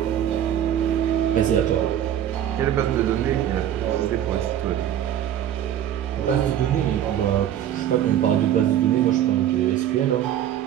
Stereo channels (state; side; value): quieter; left; 10.7 dB